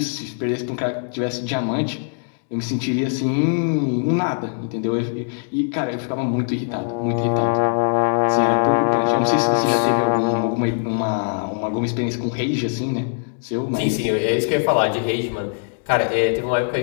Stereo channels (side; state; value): right; silent; digital silence